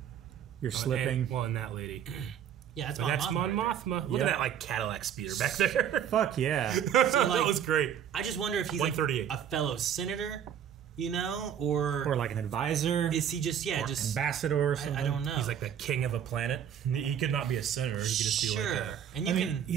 You're slipping. And that lady. Yeah, that's Mon Mothma. Look at that like Cadillac speeder back there. Fuck yeah. So, like, that was great. I just wonder if he's like a fellow senator, you know, or like an advisor. Is he just ambassador or something? I don't know. He's like the king of a planet. He could not be a senator. He could just be like a...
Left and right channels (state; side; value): quieter; left; 9.1 dB